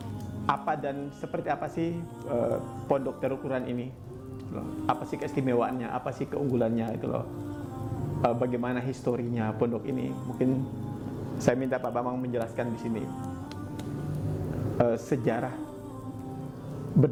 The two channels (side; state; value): both; identical; correlation 1.00